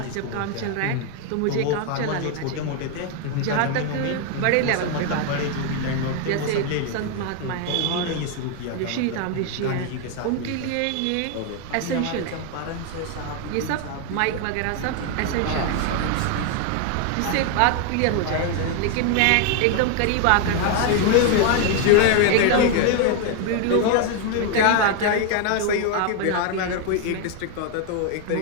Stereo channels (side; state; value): both; different; correlation 0.01